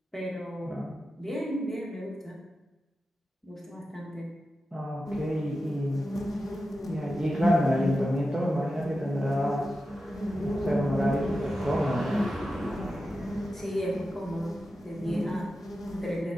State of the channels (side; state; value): both; normal; correlation 0.91